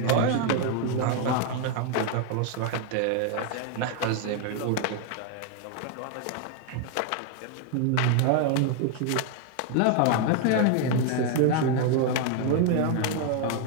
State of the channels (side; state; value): both; different; correlation 0.00